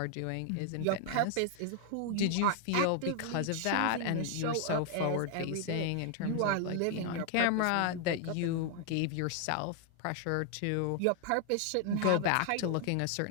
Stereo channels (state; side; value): different; both; correlation 0.00